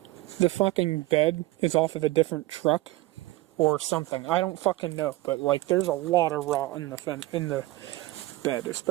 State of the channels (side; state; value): left; quieter; 18.4 dB